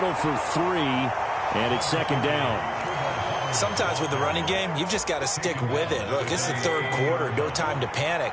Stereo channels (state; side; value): identical; both; correlation 1.00